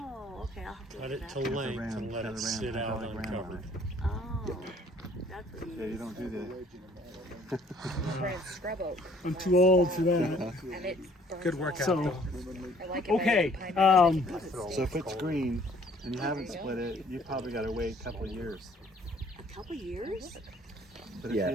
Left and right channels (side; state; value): both; normal; correlation 0.58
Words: okay. I'll have to Let look it at to that. length ram, and let got it a sit out hydraulic ram on uncovered. it. Oh, that's what you Yeah, you use. don't do that. Brand scrub oak. I'm too old for that. And it burns Good workout So- though. I like it Okay. better than pine So if it's green and you haven't split it, you probably got to wait a couple of years. A couple years? But Yeah.